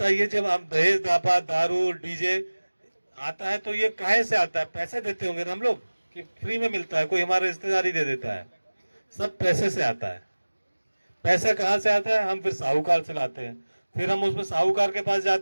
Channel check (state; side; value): inverted; both; correlation -1.00